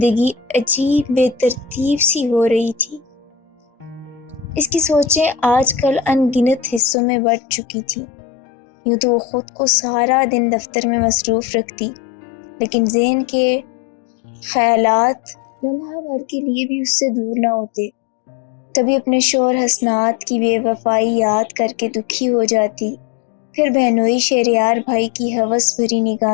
عجیب بے ترتیب سی ہو رہی تھی۔ اس کی سوچیں آج کل ان گنت حصوں میں بٹ چکی تھیں۔ یوں تو وہ خود کو سارا دن دفتر میں مصروف رکھتی، لیکن ذہن کے خیالات لمحہ بھر کے لیے بھی اس سے دور نہ ہوتے۔ کبھی اپنے شوہر حسنات کی بے وفائی یاد کر کے دکھی ہو جاتی، پھر بہنوئی شہریار بھائی کی ہوس بھری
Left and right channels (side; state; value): right; drops out; at 6.8 s